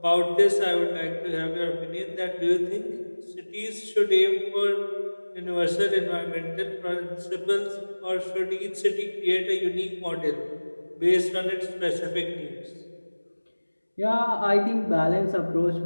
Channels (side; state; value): both; inverted; correlation -1.00